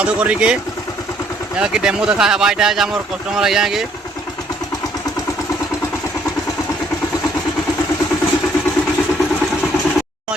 करी के जेना कि डेमो देखा है बाइटा है हमर कस्टमर आया के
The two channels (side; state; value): both; normal; correlation 0.65